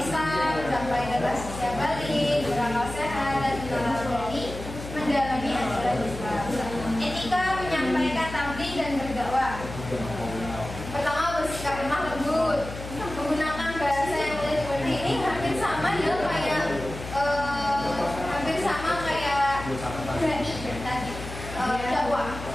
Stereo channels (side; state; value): left; noise; hum, 10 dB below the sound